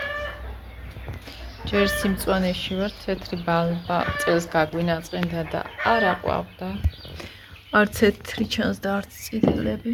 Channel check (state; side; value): identical; both; correlation 1.00